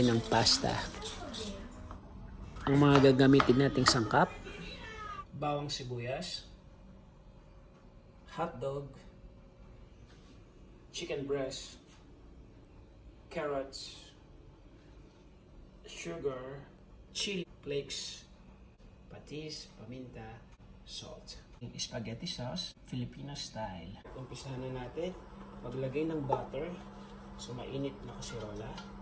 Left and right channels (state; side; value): identical; both; correlation 1.00